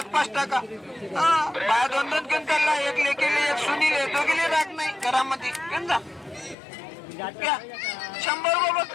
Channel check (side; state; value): right; drops out; at 6.6 s